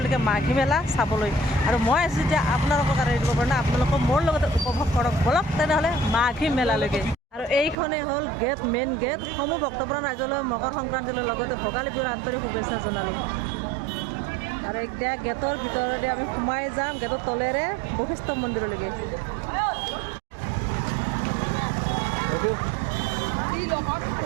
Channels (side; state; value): left; drops out; at 7.8 s